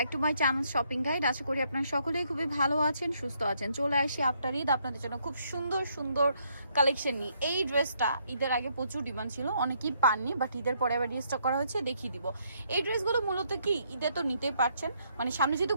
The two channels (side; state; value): both; inverted; correlation -0.72